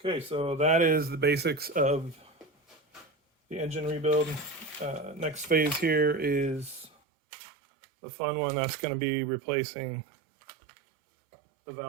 Okay, so that is the basics of the engine rebuild. Next phase here is the fun one. That's going to be replacing the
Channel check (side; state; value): left; drops out; at 6.9 s